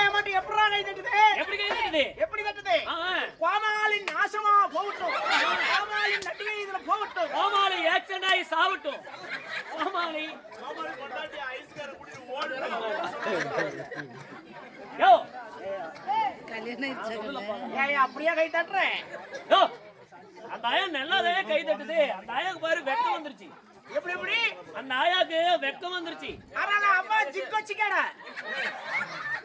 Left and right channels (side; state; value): both; identical; correlation 1.00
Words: மட்டும் எப்படிடா கை தட்டுது? எப்படி கை தட்டுது? எப்படி தட்டுது? இருக்குது கோமாளின் நாசமா போகட்டும், கோமாளின் நடிகை இதுல போகட்டும், கோமாளி ஆக்சிடென்ட் ஆகி சாவட்டும். கோமாளி கொண்டாட்டி ஐஸ்கார குடி ஓடு. யோ ஏய் அப்படியே கை தட்டுறேன். யோ அந்த ஆயா நல்லாவே கை தட்டுது. அந்த ஆயாக்கு பாரு வெக்கம் வந்துருச்சு. எப்படி எப்படி அந்த ஆயாக்கு வெக்கம் வந்துருச்சு. ஆனா அம்மா ஜிக் வச்சுக்கடா.